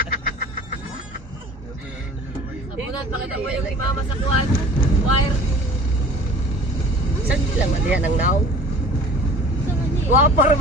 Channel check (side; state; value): both; normal; correlation 0.46